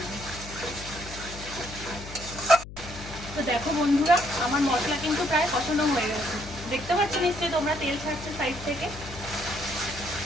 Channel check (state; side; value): noise; left; hum, 13 dB below the sound